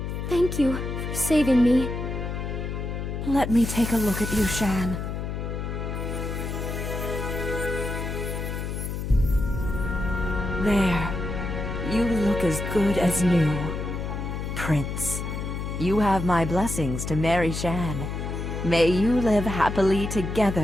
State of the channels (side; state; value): left; noise; hum, 4 dB below the sound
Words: Thank you for saving me. Let me take a look at you, Shan. There. You look as good as new. Prince, you have my blessings to marry Shan. May you live happily